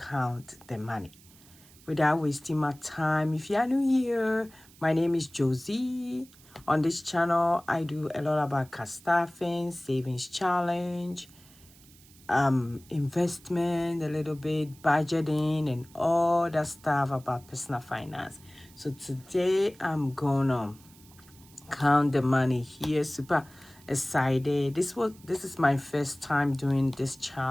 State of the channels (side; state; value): right; noise; hiss, 25 dB below the sound